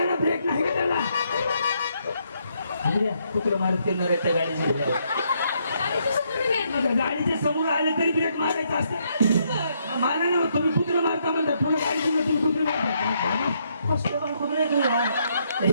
ना ब्रेक नाही का त्याला कुत्र मारत करणार आहे त्या गाडी झाल्यावर गाडीच्या समोर आले तरी ब्रेक मारायचा असते मारा ना तुम्ही कुत्र मारता म्हणता पुन्हा गाडी तुम्ही कुत्र मारता कुत्र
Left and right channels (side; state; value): both; inverted; correlation -0.74